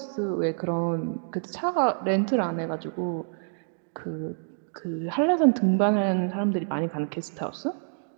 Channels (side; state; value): left; silent; digital silence